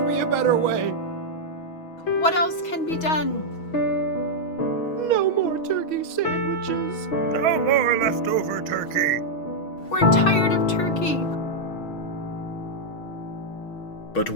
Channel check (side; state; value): right; late; 6.2 ms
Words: be a better way. What else can be done? No more turkey sandwiches. No more leftover turkey. We're tired of turkey. But